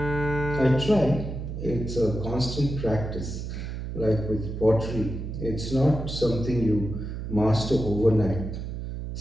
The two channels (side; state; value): right; noise; hum, 6 dB below the sound